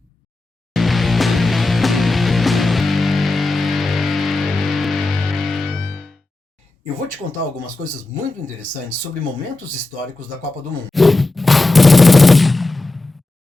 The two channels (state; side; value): quieter; right; 3.0 dB